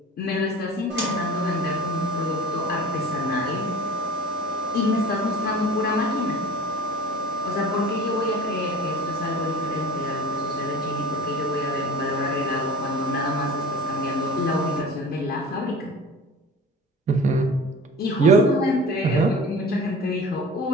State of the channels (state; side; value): normal; both; correlation 0.39